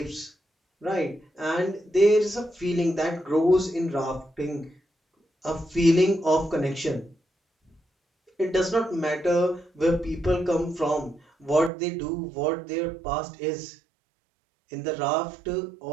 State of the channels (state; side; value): drops out; left; at 11.7 s